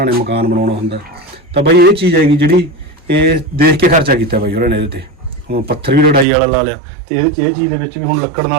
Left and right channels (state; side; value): drops out; left; at 6.2 s